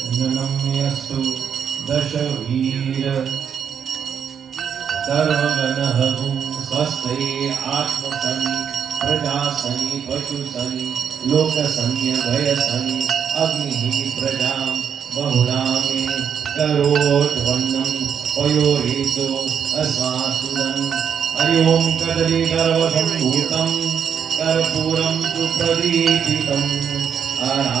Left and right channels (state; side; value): quieter; left; 7.7 dB